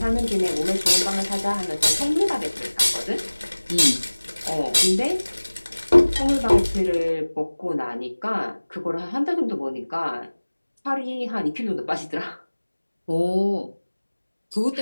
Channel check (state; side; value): inverted; both; correlation -1.00